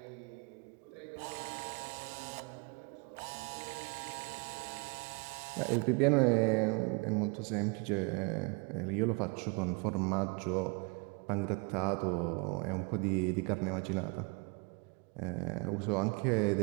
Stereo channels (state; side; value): quieter; left; 32.4 dB